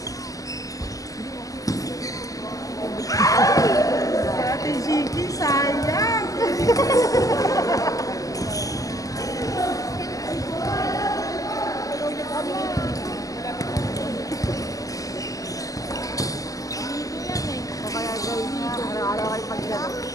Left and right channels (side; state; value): right; late; 0.17 ms